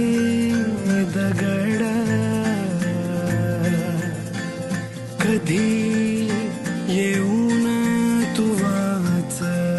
दगड कधी येऊन तू वाच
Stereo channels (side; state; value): both; identical; correlation 1.00